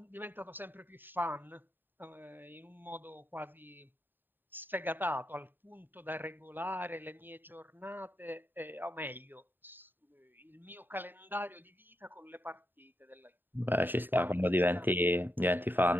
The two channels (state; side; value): late; left; 0.093 ms